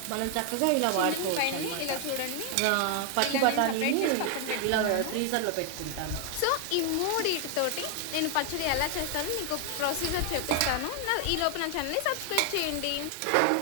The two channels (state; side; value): different; both; correlation 0.00